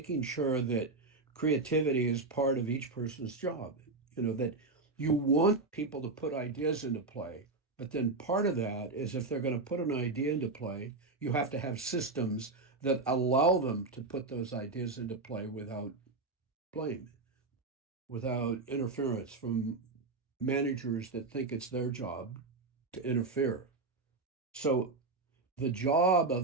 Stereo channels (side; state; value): left; quieter; 3.6 dB